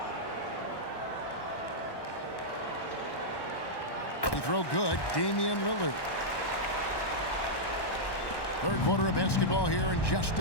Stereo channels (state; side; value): late; right; 1.1 ms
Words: Throw good, Damian Lillard. 3rd quarter of basketball here, and just